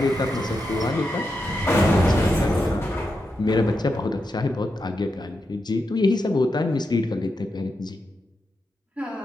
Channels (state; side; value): normal; both; correlation 0.86